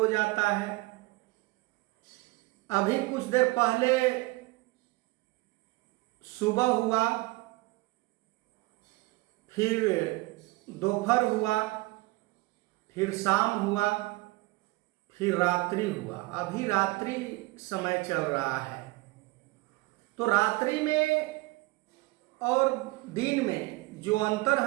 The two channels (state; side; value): quieter; left; 22.1 dB